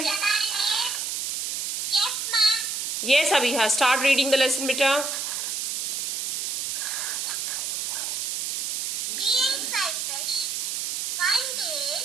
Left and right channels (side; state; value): right; noise; hiss, 1 dB below the sound